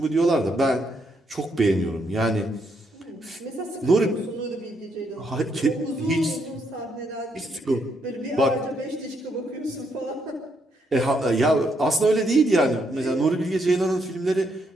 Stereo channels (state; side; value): normal; both; correlation 0.76